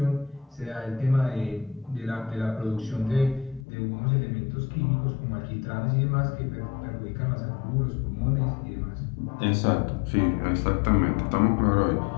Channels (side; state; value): right; drops out; at 3.7 s